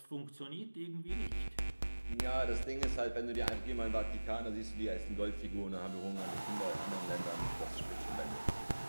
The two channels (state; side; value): inverted; both; correlation -1.00